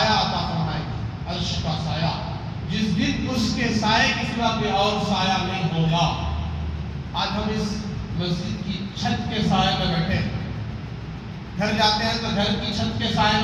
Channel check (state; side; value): identical; both; correlation 1.00